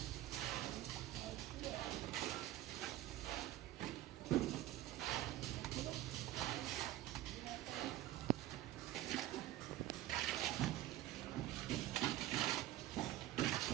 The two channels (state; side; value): quieter; left; 14.7 dB